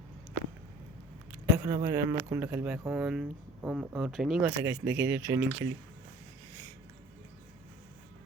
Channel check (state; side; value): normal; both; correlation 0.47